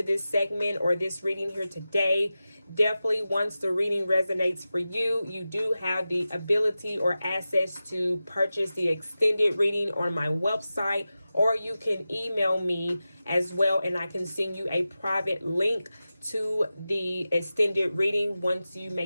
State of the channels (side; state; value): both; inverted; correlation -0.94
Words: this segment or this reading here today. Definitely, once the reading resonates for you, you do have the ability or access to purchase the extended reading on my website, or you can email me as well, and I can send you a private link to the extended reading once you